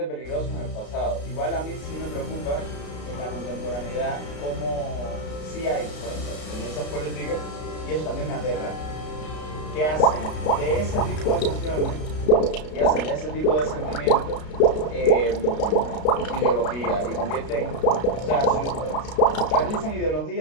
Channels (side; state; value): right; late; 33 ms